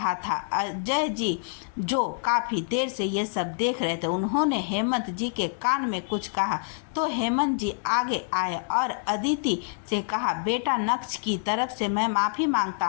था। अजय जी जो काफ़ी देर से ये सब देख रहे थे, उन्होंने हेमंत जी के कान में कुछ कहा तो हेमंत जी आगे आए और अदिति से कहा, बेटा नक्श की तरफ से मैं माफ़ी मांगता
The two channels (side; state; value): right; silent; digital silence